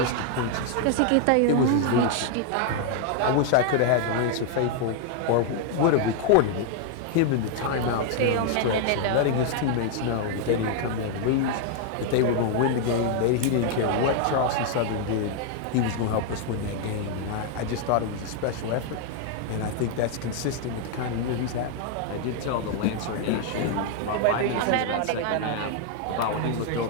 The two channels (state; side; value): different; both; correlation 0.00